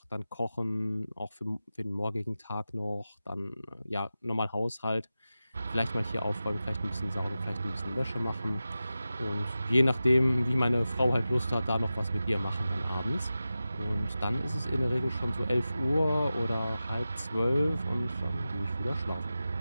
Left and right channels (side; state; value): both; inverted; correlation -0.94